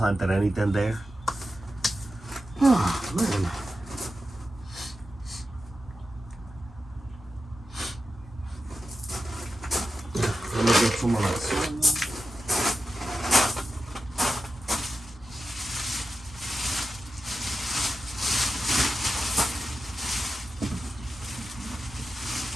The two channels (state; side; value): normal; both; correlation 0.90